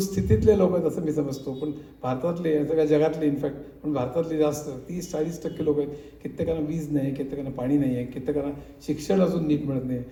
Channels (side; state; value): both; identical; correlation 1.00